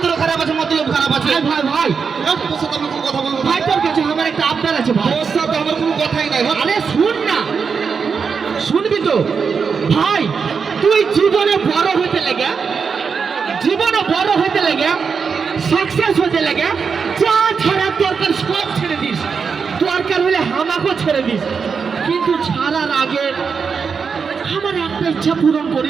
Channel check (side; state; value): left; quieter; 5.8 dB